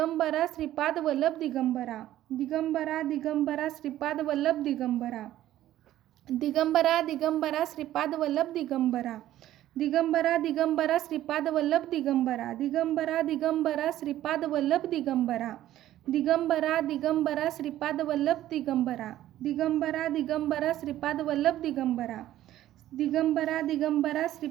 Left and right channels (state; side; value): quieter; left; 13.4 dB